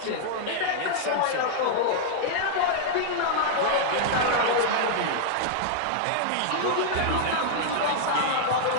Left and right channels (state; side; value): different; both; correlation -0.01